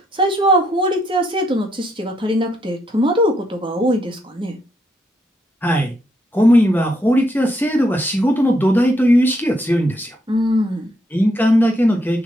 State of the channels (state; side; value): normal; both; correlation 0.76